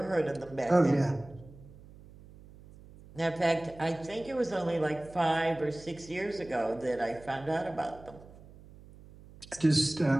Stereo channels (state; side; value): noise; right; hum, 20 dB below the sound